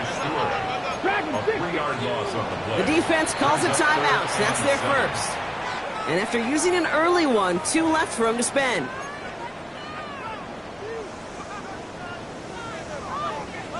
The defense calls a timeout. So that's their first. And after using an early one, 2 left for him to spend.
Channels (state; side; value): identical; both; correlation 1.00